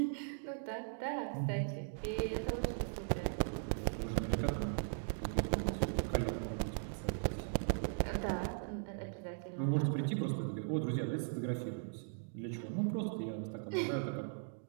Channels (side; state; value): left; silent; digital silence